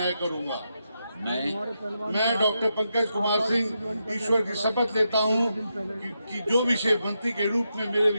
करूंगा। मैं डॉक्टर पंकज कुमार सिंह ईश्वर की शपथ लेता हूं कि जो विषय मंत्री के रूप में मेरे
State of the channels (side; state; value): both; inverted; correlation -0.85